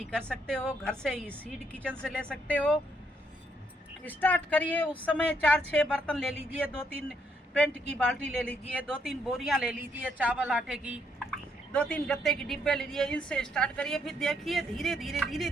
कर सकते हो। घर से ही सीड किचन से ले सकते हो। स्टार्ट करिए। उस समय 4-6 बर्तन ले लीजिए, 2-3 पेंट की बाल्टी ले लीजिए, 2-3 बोरियां ले लीजिए चावल आटे की, 2-3 गत्ते की डिब्बे ले लीजिए। इनसे स्टार्ट करिए। फिर देखिए धीरे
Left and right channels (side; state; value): both; normal; correlation 0.73